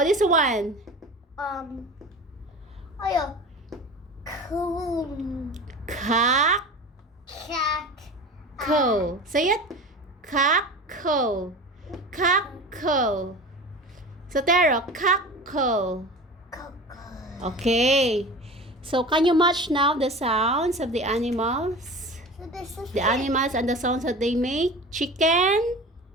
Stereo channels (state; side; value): normal; both; correlation 0.35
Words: this one? Coon. Cock. Cat. Co. Say it. Cock-co. So, Tero, cock-co. Okay. So, can you match now the sounds of the animals? So this is The animals and the sounds that they make? Chicken?